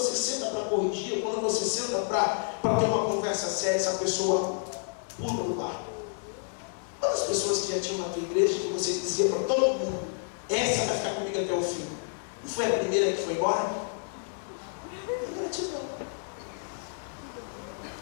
senta para corrigir, quando você senta para ter uma conversa séria, essa pessoa pula do barco. Quantas pessoas que já tinham na tua igreja que você dizia para todo mundo: essa vai ficar comigo até o fim? Não foi a primeira que foi embora? Ingratidão.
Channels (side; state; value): right; silent; 58 dB below the other